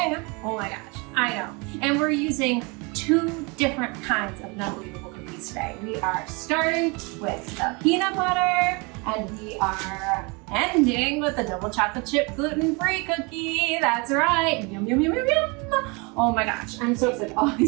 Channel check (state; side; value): quieter; left; 29.3 dB